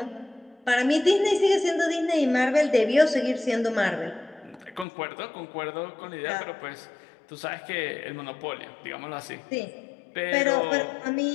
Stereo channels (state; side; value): drops out; right; at 4.9 s